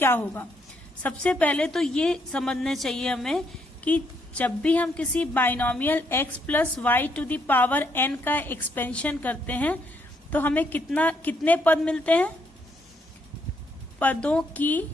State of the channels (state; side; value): normal; both; correlation 0.73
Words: होगा? सबसे पहले तो ये समझना चाहिए हमें कि जब भी हम किसी binomial x + y to the power n का एक्सपेंशन करते हैं तो हमें कितने पद मिलते हैं? पदों की